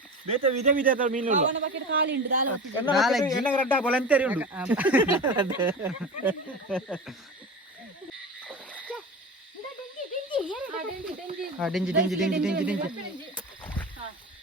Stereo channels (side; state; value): both; normal; correlation 0.28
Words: ಬೇತೆ ವಿಧ ವಿಧ ಮೀನು ಎನ್ನ ರಡ್ಡ ಬಲಂತೇರಿ ಉಂಡು ಡೆಂಜಿ